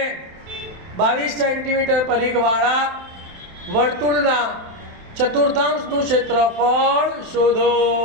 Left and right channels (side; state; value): left; late; 27 ms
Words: 22 centimetre પરિઘવાળા વર્તુળના ચતુર્થાંશનું ક્ષેત્રફળ શોધો।